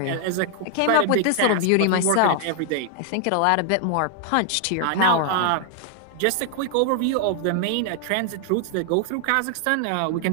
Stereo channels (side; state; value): both; different; correlation 0.00